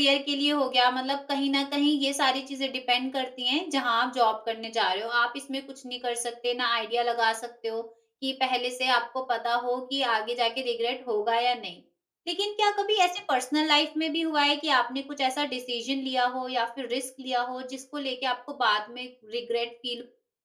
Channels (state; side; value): identical; both; correlation 1.00